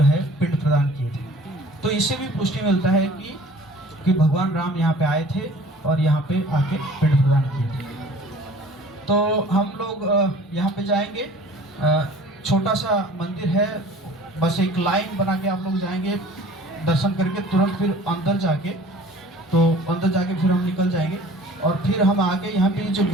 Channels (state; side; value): normal; both; correlation 0.48